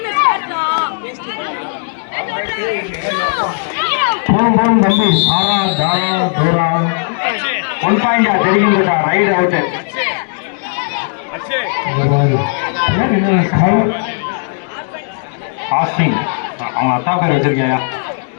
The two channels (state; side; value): silent; right; 70 dB below the other